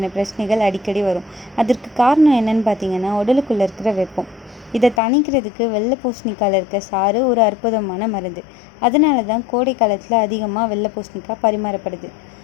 பிரச்சனைகள் அடிக்கடி வரும். அதற்கு காரணம் என்னன்னு பார்த்தீங்கன்னா, உடலுக்குள்ளே இருக்கிற வெப்பம். இதை தணிக்கிறதுக்கு வெள்ளை பூசணிக்காயில் இருக்க சாறு ஒரு அற்புதமான மருந்து. அதனால தான் கோடை காலத்தில் அதிகமாக வெள்ளை பூசணிக்காய் பரிமாறப்படுது.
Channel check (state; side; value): drops out; right; at 5.0 s